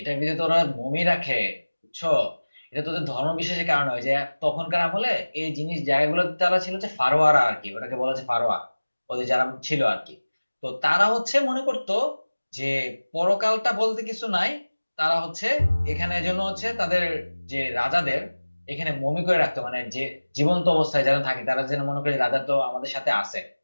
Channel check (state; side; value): inverted; both; correlation -1.00